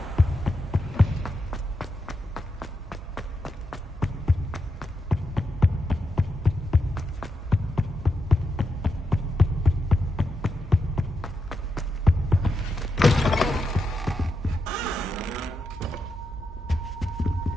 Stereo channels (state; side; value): normal; both; correlation 0.85